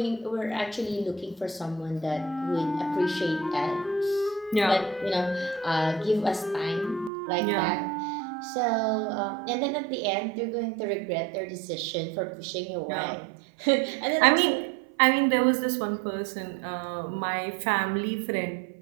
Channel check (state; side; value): drops out; left; at 7.1 s